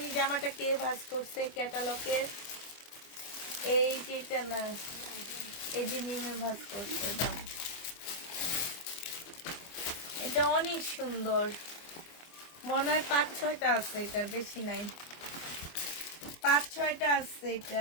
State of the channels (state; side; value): late; right; 25 ms